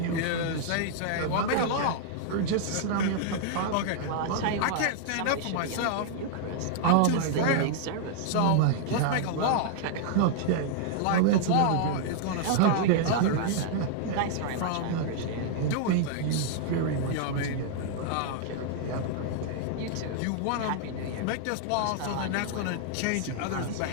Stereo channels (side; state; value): both; different; correlation -0.01